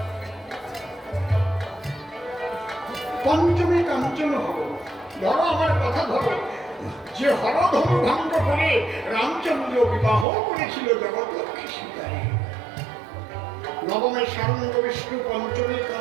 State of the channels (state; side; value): drops out; left; at 10.2 s